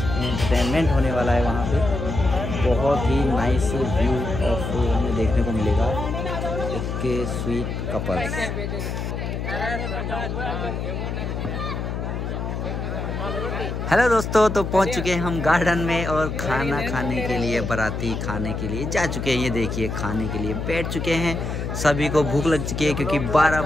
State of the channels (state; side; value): noise; left; hum, 3 dB below the sound